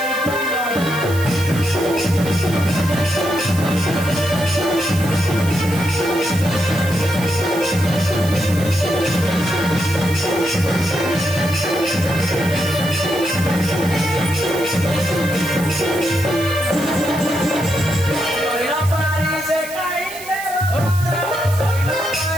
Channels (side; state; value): right; noise; hiss, 13 dB below the sound